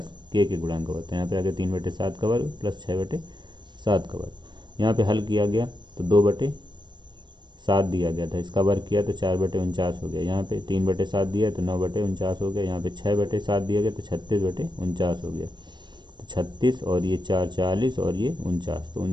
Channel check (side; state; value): left; late; 0.22 ms